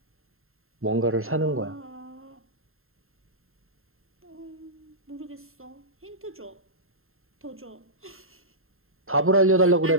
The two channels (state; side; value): late; left; 0.61 ms